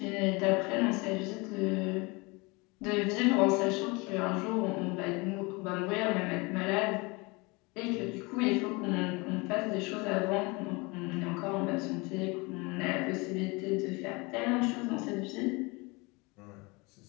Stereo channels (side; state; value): right; quieter; 26.6 dB